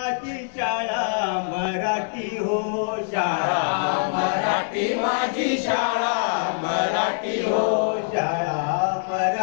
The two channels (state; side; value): silent; right; digital silence